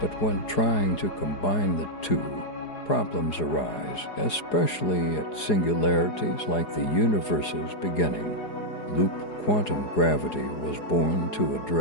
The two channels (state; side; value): late; right; 4.8 ms